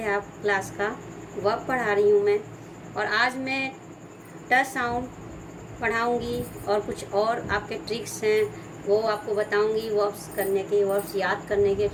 आप क्लास का। वर्ब पढ़ा रही हूँ मैं, और आज मैं ट साउंड पढ़ाऊँगी और कुछ और आपके ट्रिक्स हैं वो आपको बताऊँगी। वर्ब्स करने के, वर्ब्स याद करने के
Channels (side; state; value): both; identical; correlation 1.00